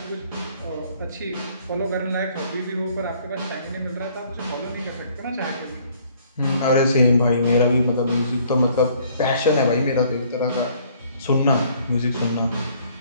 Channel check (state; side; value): inverted; both; correlation -0.60